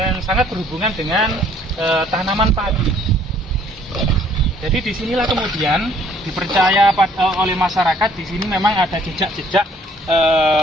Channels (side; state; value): both; normal; correlation 0.60